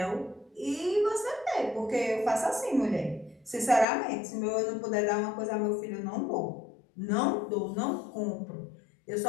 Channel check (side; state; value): right; drops out; at 3.9 s